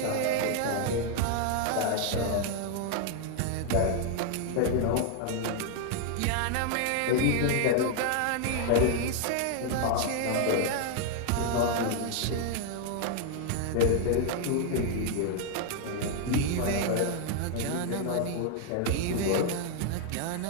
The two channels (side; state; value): both; different; correlation 0.00